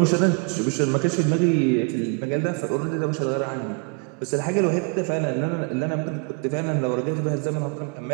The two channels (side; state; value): left; quieter; 36.7 dB